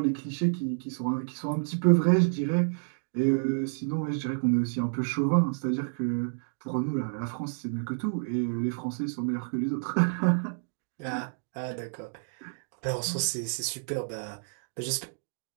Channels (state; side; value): silent; left; digital silence